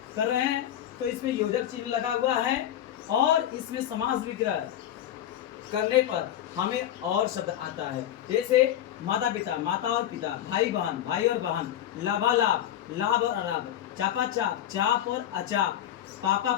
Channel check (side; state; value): right; quieter; 11.3 dB